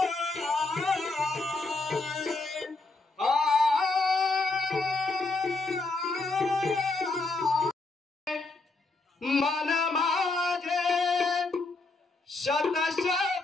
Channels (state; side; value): quieter; right; 3.4 dB